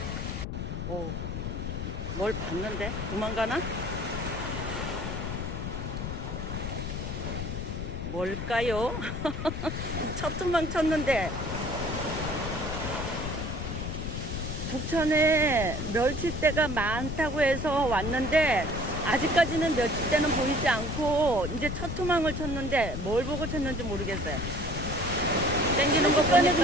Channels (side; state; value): left; noise; rumble, 4 dB below the sound